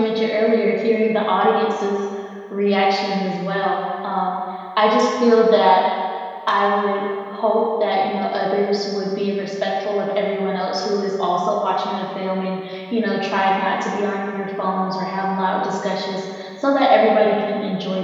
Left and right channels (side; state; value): both; identical; correlation 1.00